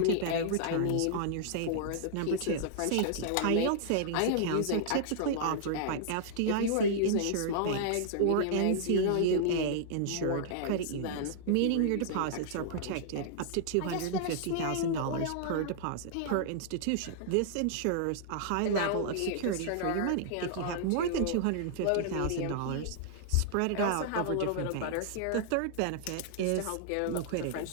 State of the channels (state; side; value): different; both; correlation -0.01